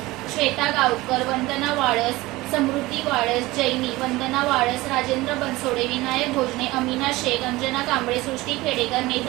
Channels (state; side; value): quieter; left; 19.7 dB